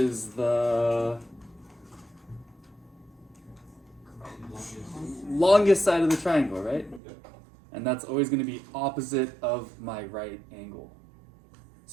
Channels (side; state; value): left; drops out; at 7.0 s